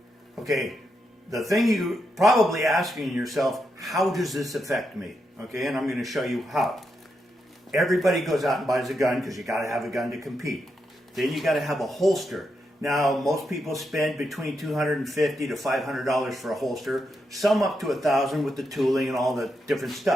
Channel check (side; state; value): both; normal; correlation 0.83